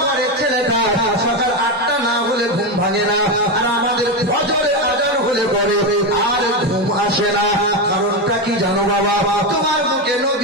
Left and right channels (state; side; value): normal; both; correlation 0.12